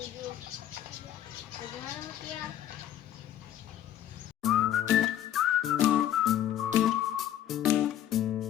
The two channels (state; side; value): quieter; right; 11.7 dB